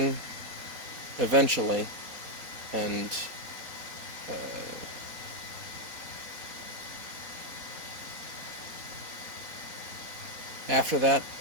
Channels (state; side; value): late; left; 4.1 ms